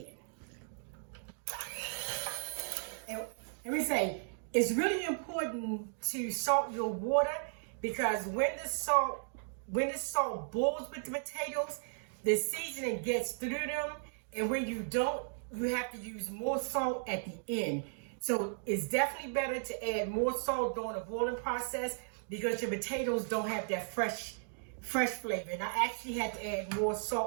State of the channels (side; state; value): left; silent; digital silence